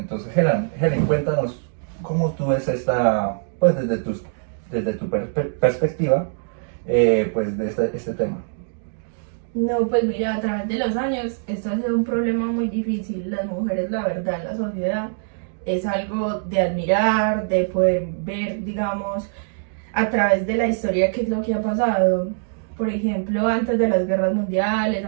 Helen, cuéntanos cómo tú ves esta, pues desde tu perspectiva, pues de este tema. No, pues mira, a través de los años esto ha sido un problema muy difícil. Las mujeres, la verdad, en la sociedad es algo de admirar, de poder ver, digamos, a través de la historia qué es lo que ha pasado. Por ejemplo, antes de las guerras mundiales,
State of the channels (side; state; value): left; silent; digital silence